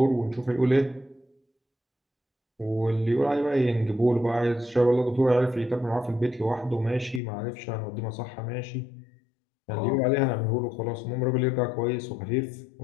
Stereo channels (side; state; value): right; drops out; at 7.2 s